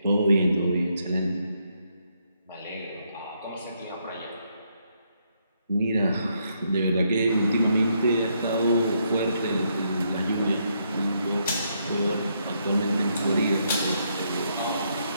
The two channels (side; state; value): both; inverted; correlation -0.76